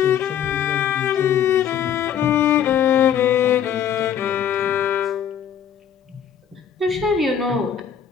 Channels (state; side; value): quieter; right; 8.7 dB